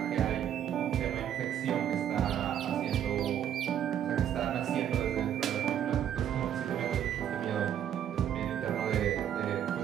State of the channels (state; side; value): quieter; left; 9.9 dB